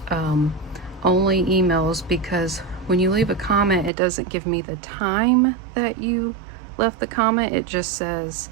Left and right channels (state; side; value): drops out; left; at 3.9 s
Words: Only emails, because when you leave a comment, it doesn't give me the time that you left the comment. It just says